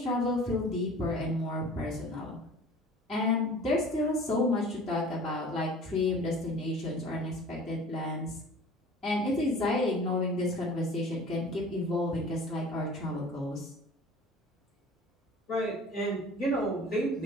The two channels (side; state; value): both; normal; correlation 0.44